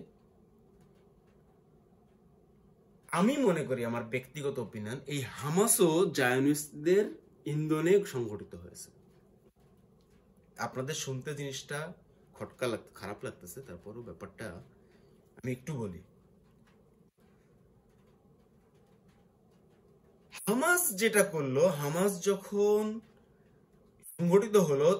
আমি মনে করি, আমার ব্যক্তিগত ওপিনিয়ন, এই হামাসও জায়নিস্টদের ইন্ধনে সংগঠিত হয়েছে। আপনাদের শুনতে জিনিসটা খারাপ লাগতেছে, তারপরও ব্যাপারটা আমি একটু বলি। হামাস যেটা করলো, হামাস যখন সংগঠিত হলো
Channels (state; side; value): identical; both; correlation 1.00